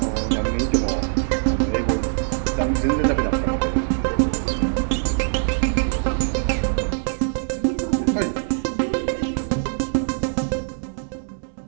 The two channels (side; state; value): left; silent; 64 dB below the other